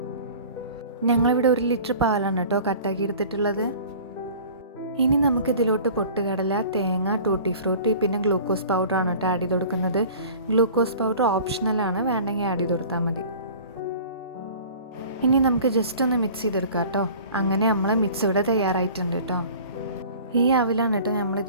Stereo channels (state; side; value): inverted; both; correlation -0.44